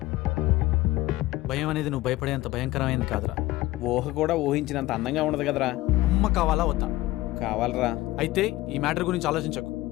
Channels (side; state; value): right; quieter; 17.6 dB